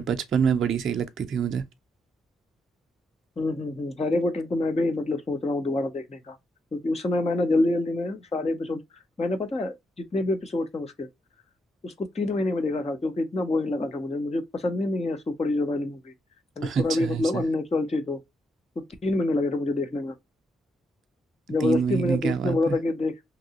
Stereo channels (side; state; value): both; normal; correlation 0.80